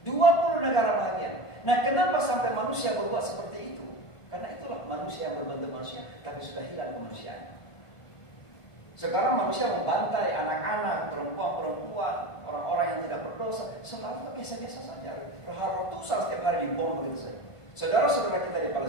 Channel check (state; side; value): late; right; 1.5 ms